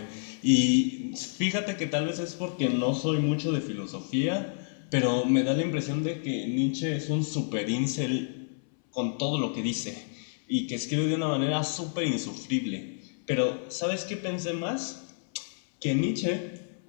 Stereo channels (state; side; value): silent; right; 58 dB below the other